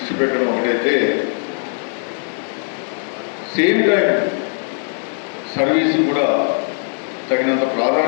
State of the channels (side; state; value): right; silent; 56 dB below the other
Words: పెట్టడం ఒకటైతే, సేమ్ టైం సర్వీస్ కూడా తగినంత